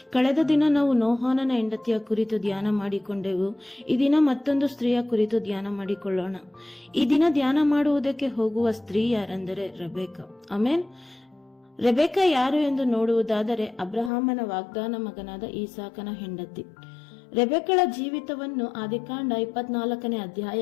ಕಳೆದ ದಿನ ನಾವು ನೋಹಾನನ ಹೆಂಡತಿಯ ಕುರಿತು ಧ್ಯಾನ ಮಾಡಿಕೊಂಡೆವು. ಈ ದಿನ ಮತ್ತೊಂದು ಸ್ತ್ರೀಯ ಕುರಿತು ಧ್ಯಾನ ಮಾಡಿಕೊಳ್ಳೋಣ. ಈ ದಿನ ಧ್ಯಾನ ಮಾಡುವುದಕ್ಕೆ ಹೋಗುವ ಸ್ತ್ರೀ ಯಾರೆಂದರೆ ರೆಬೆಕ್ಕಾ. ಆಮೆನ್. ರೆಬೆಕ್ಕಾ ಯಾರು ಎಂದು ನೋಡುವುದಾದರೆ, ಅಬ್ರಹಾಮನ ವಾಗ್ದಾನ ಮಗನಾದ ಈಸಾಕನ ಹೆಂಡತಿ. ರೆಬೆಕ್ಕಳ ಜೀವಿತವನ್ನು ಆದಿಕಾಂಡ 24ನೇ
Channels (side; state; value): right; drops out; at 14.1 s